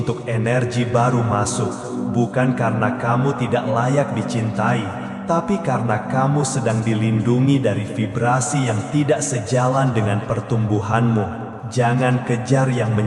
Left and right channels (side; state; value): both; identical; correlation 1.00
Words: energi baru masuk. Bukan karena kamu tidak layak dicintai, tapi karena kamu sedang dilindungi dari vibrasi yang tidak sejalan dengan pertumbuhanmu. Jangan kejar yang